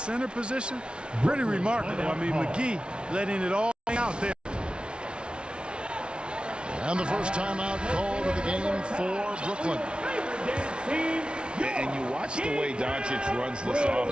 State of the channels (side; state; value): left; late; 0.057 ms